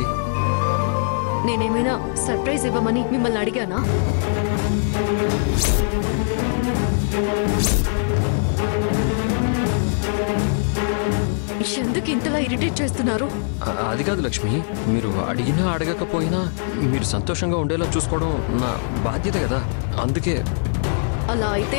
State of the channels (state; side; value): silent; right; digital silence